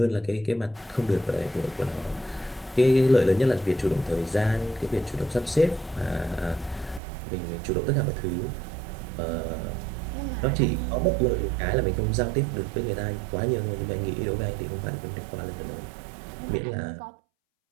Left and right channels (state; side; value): drops out; left; at 7.0 s